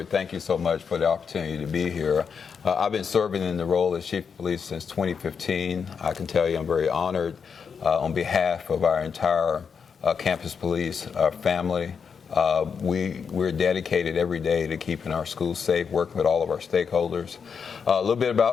thank you so much for the opportunity to be here. I've been serving in the role as Chief of Police since 2015. I can tell you I'm very honored on behalf of our entire campus police family. We're dedicated every day to keeping our schools safe, working with all of our stakeholders. A little bit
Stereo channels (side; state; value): right; quieter; 6.3 dB